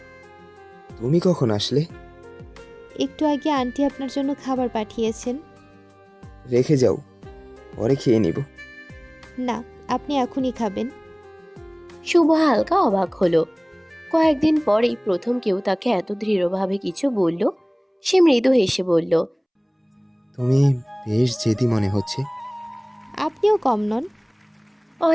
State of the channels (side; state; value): both; identical; correlation 1.00